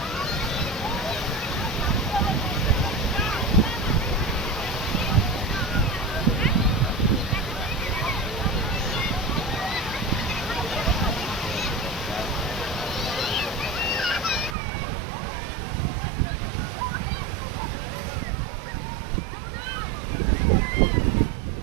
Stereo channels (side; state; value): left; drops out; at 14.6 s